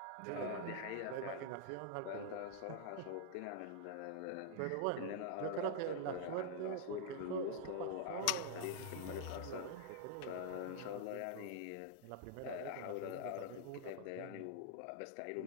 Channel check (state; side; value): different; both; correlation -0.01